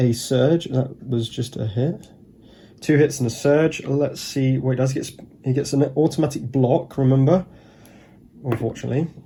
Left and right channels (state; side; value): identical; both; correlation 1.00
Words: surge. That was just a hit. 2 hits and a surge. Let's see what he does. He gets an automatic block, remember? Unfortunately.